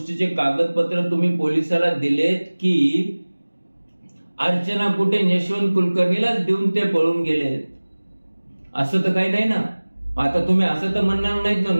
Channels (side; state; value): both; inverted; correlation -1.00